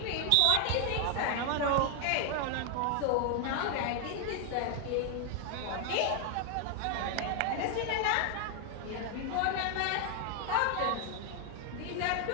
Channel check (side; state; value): both; different; correlation 0.00